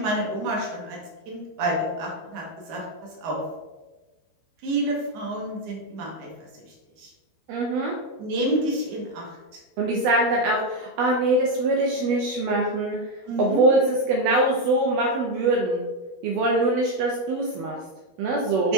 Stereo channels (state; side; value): late; left; 12 ms